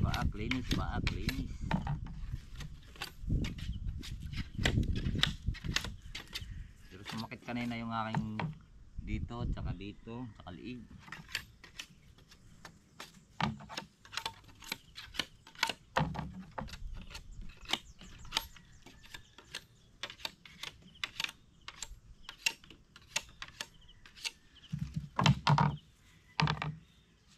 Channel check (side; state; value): both; identical; correlation 1.00